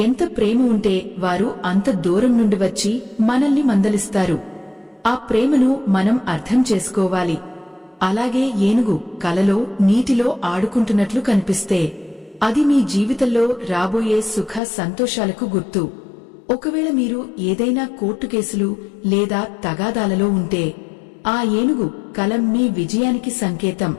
ఎంత ప్రేమ ఉంటే వారు అంత దూరం నుండి వచ్చి మనల్ని మందలిస్తారు. ఆ ప్రేమను మనం అర్థం చేసుకోవాలి. అలాగే ఏనుగు కలలో నీటిలో ఆడుకుంటున్నట్లు కనిపిస్తే అది మీ జీవితంలో రాబోయే సుఖ సంతోషాలకు గుర్తు. ఒకవేళ మీరు ఏదైనా కోర్టు కేసులు లేదా తగాదాలలో ఉంటే ఆ ఏనుగు కల మీ విజయానికి సంకేతం.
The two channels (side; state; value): right; drops out; at 14.6 s